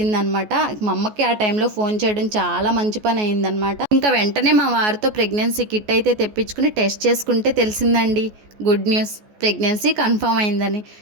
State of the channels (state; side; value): late; left; 14 ms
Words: మా అమ్మకి ఆ టైంలో ఫోన్ చేయడం చాలా మంచి పని అయిందనమాట. ఇంకా వెంటనే మా వారితో ప్రెగ్నెన్సీ కిట్ అయితే తెప్పించుకుని టెస్ట్ చేసుకుంటే తెలిసిందండి, గుడ్ న్యూస్, ప్రెగ్నెన్సీ కన్ఫర్మ్ అయిందని.